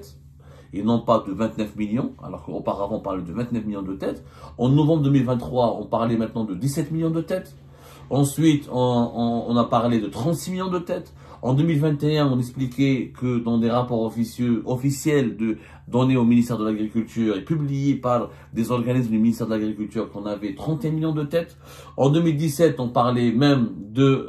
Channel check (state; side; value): identical; both; correlation 1.00